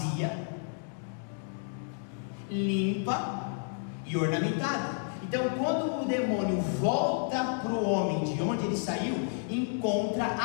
limpa e ornamentada. Então, quando o demônio volta para o homem de onde ele saiu, encontra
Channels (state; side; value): silent; right; 57 dB below the other